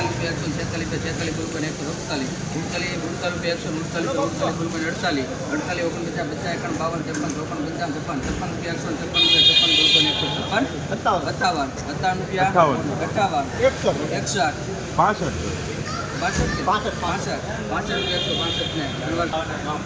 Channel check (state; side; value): identical; both; correlation 1.00